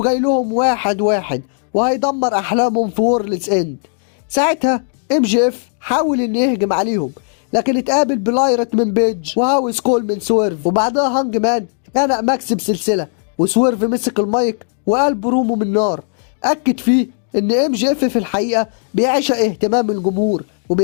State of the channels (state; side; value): silent; right; digital silence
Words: جاي لهم واحد واحد وهيدمر أحلامهم في وورلدز إند. ساعتها ام جي اف حاول إنه يهجم عليهم، لكن اتقابل بلايرت من بيج وهاوس كول من سويرف، وبعدها هانج مان خنق ماكس بسلسلة، وسويرف مسك المايك وقال برومو من نار أكد فيه إن ام جي اف في الحقيقة بيعشق اهتمام الجمهور